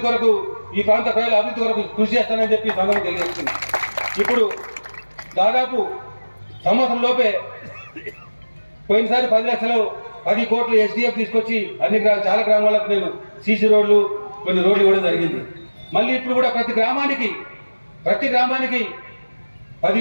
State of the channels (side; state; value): both; inverted; correlation -1.00